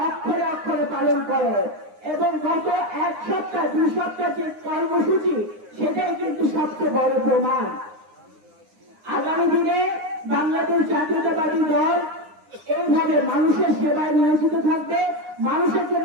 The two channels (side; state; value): left; late; 9.7 ms